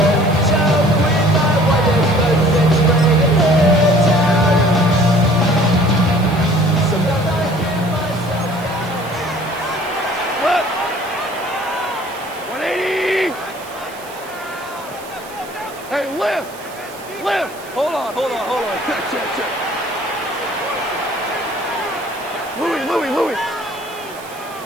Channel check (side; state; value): right; noise; hiss, 19 dB below the sound